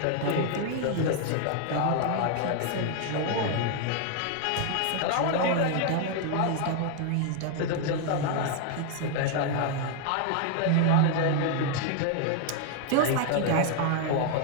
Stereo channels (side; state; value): both; different; correlation 0.00